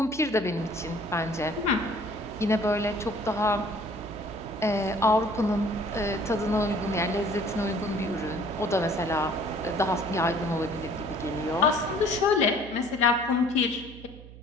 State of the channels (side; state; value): right; noise; hum, 17 dB below the sound